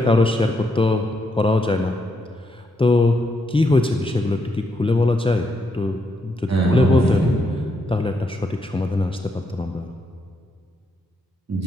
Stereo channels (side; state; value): both; normal; correlation 0.78